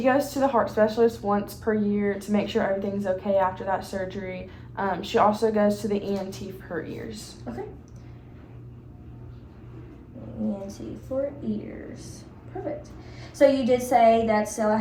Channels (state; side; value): identical; both; correlation 1.00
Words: goes to the heart specialist once per year to make sure everything's okay after that surgery. She also goes to the ENT for her ears. Okay. ENT for ears. Perfect. So you did say that Stella